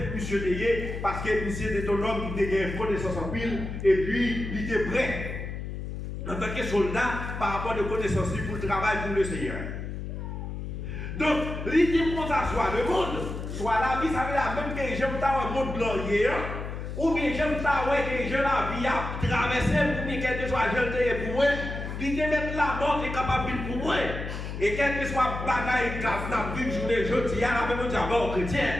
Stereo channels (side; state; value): left; noise; hum, 6 dB below the sound